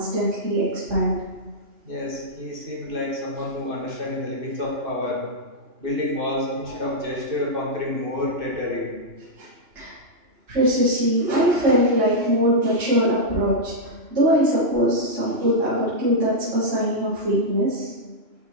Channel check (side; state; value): left; late; 2.9 ms